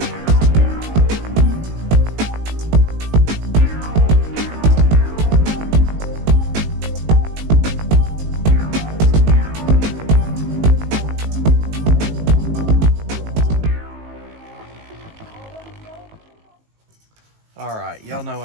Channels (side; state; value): left; late; 19 ms